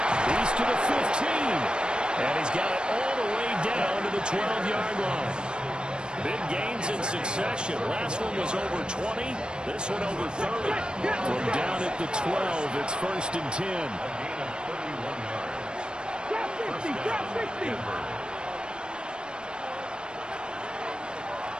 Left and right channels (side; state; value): left; late; 0.051 ms